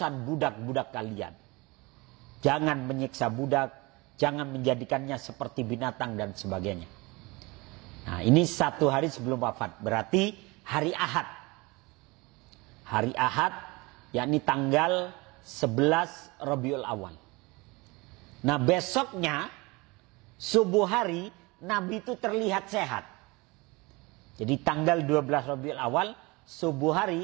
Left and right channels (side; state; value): left; quieter; 24.7 dB